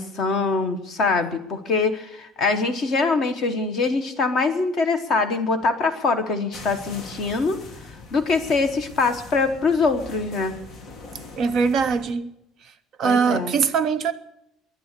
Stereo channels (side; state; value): both; normal; correlation 0.52